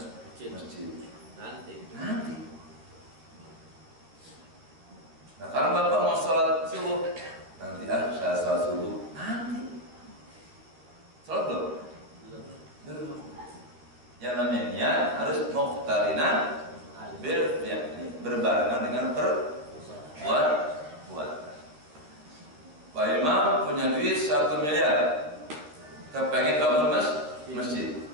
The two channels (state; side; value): late; left; 13 ms